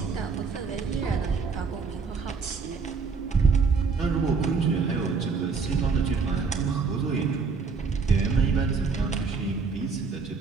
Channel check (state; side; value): quieter; left; 4.9 dB